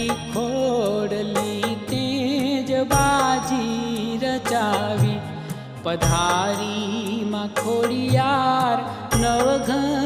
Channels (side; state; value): both; identical; correlation 1.00